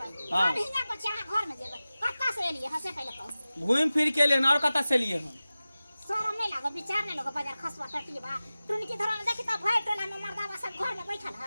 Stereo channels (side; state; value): both; inverted; correlation -0.96